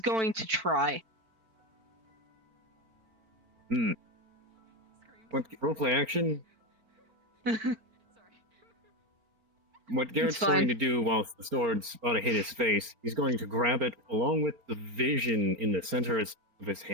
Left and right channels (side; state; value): left; late; 4.4 ms